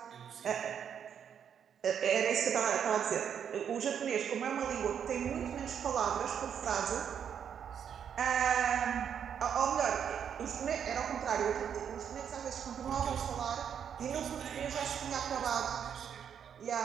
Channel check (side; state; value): left; quieter; 8.1 dB